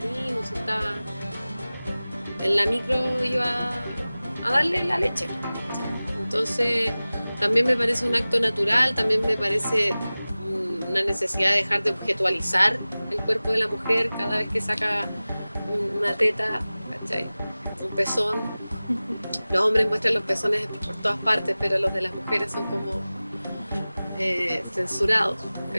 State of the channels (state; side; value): inverted; both; correlation -0.98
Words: o si estaba en la micro, iba a darle la leche. Entonces también me parece un acto natural, también me parece una necesidad de dejar de objetualizar el cuerpo de la mujer cada vez que saca una teta, ¿cachai? Un pezón. Los hombres muestran los pezones por todas partes, pero los de las mujeres son como censurados,